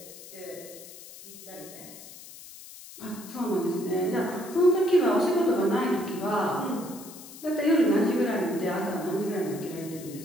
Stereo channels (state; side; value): noise; left; hiss, 16 dB below the sound